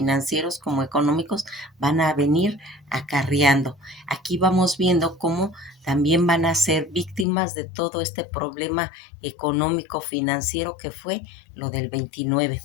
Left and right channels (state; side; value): drops out; right; at 7.2 s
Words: como económicos, van a venir acarreando. Aquí vamos viendo cómo también van a ser víctimas de todo este problema económico financiero que fue lo del 29.